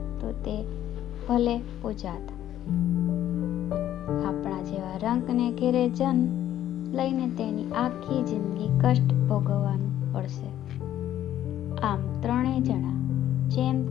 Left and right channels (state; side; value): quieter; right; 12.0 dB